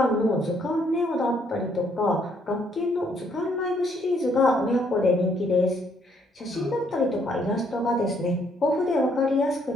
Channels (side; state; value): both; normal; correlation 0.69